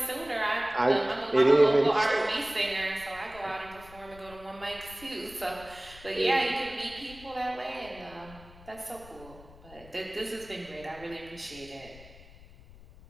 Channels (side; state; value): left; noise; rumble, 20 dB below the sound